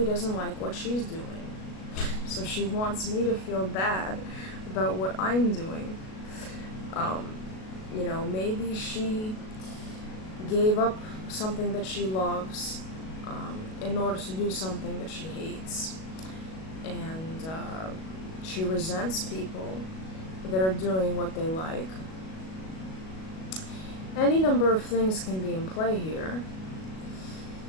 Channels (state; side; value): late; right; 37 ms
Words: doesn't like what she's doing, so she wants me to feel bad about what I'm doing. Maybe she gave up something that she loves in order to do something that she hates. And she resents people that are doing what they like. Any number of things can be in play here.